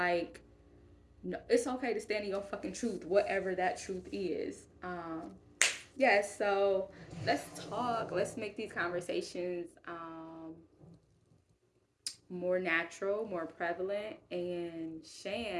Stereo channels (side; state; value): both; identical; correlation 1.00